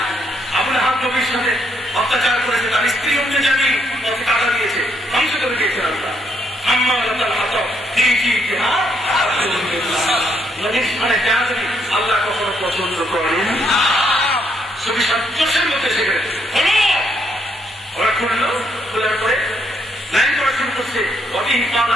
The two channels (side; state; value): both; normal; correlation 0.74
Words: আবুল আহাব নবীর সাথে অত্যাচার করেছে, তার স্ত্রী অন্য জানি পথে কাটা দিয়েছে, ধ্বংস করে দিয়েছে আল্লাহ। নবীর স্থানে বেয়াদবি আল্লাহ কখনো পছন্দ করেন। চোষের মধ্যে সেখানে হলো, ওরা খুললো, খোলার পরে লাইন করা শুরু করছে।